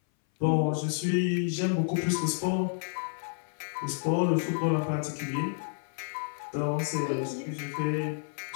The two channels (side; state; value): right; silent; 58 dB below the other